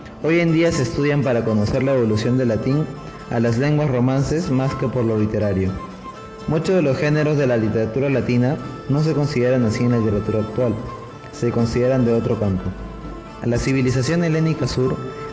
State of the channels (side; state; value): both; identical; correlation 1.00